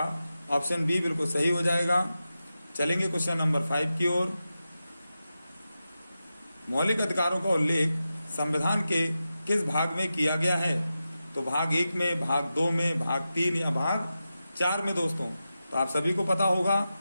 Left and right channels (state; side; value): inverted; both; correlation -0.92